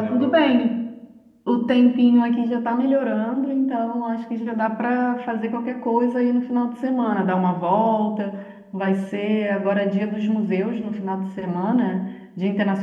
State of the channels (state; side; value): identical; both; correlation 1.00